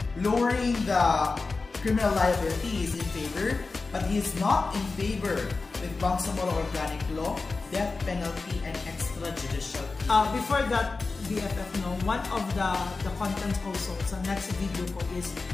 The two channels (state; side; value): quieter; right; 3.9 dB